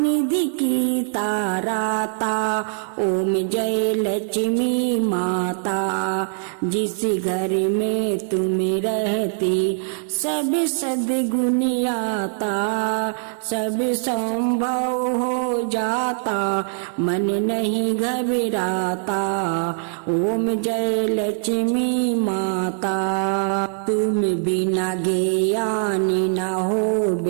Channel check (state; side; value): silent; left; 64 dB below the other